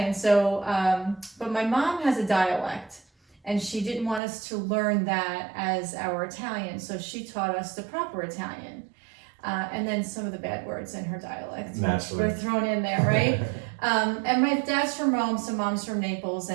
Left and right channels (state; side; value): drops out; left; at 4.2 s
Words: So, but my mom has a dialect, and she didn't want us to learn that as our Italian, so she taught us the proper Italian. And then some of the bad words in her dialect were thrown in there, right? And my dad's from Rome, so mom's from Naples,